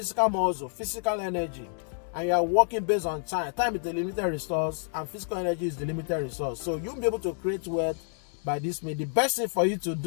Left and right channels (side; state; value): right; silent; digital silence